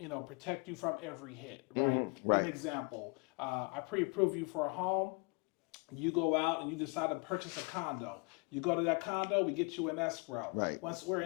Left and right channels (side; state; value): right; quieter; 31.4 dB